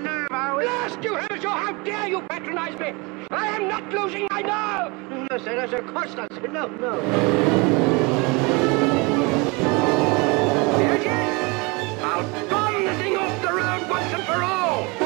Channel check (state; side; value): quieter; left; 27.4 dB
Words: are we? Blast you, have a sure. How dare you patronize me? I am not losing my nerve. No, sir, of course not, sir. No. There it is! I'll bomb the thing off the road once and for all!